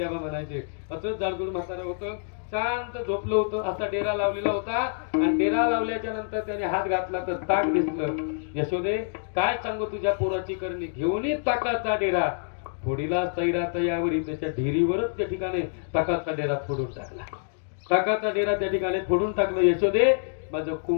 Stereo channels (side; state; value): right; silent; digital silence